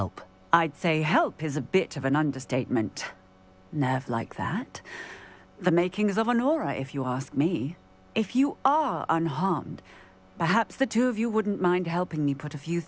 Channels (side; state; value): both; identical; correlation 1.00